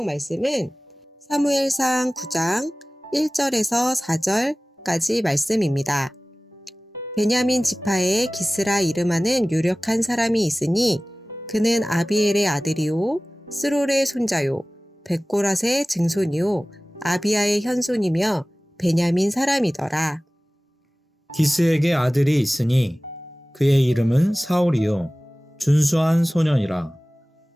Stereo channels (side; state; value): both; normal; correlation 0.98